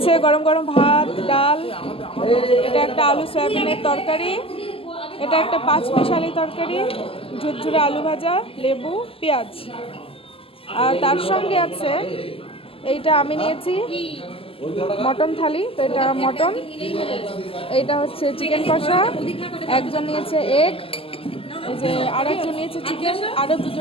গরম গরম ভাত, ডাল, এটা একটা আলু সয়াবিনের তরকারি, এটা একটা পাঁচমিশালি তরকারি, ঝুরঝুরে আলু ভাজা, লেবু, পেঁয়াজ। আর তার সঙ্গে আছে এইটা আমি নিয়েছি মটন থালি, তো এটা মটন, এইটা হচ্ছে চিকেন কষা, একজন নিয়েছে এগ, এই যে আর একজন নিয়েছে চিকেন, আরও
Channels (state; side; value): late; right; 0.27 ms